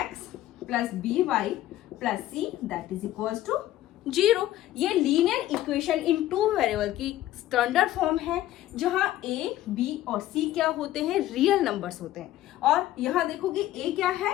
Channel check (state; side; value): quieter; right; 14.3 dB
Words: + by + c that is equals to 0। ये linear equation in two variable की स्टैंडर्ड फॉर्म है, जहां a, b और c क्या होते हैं? रियल नंबर्स होते हैं। और यहाँ देखोगे a क्या है?